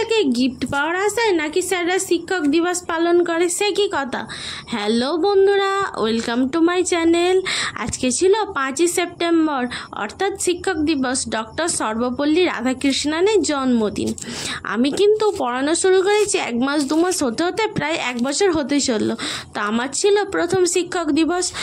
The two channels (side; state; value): both; identical; correlation 1.00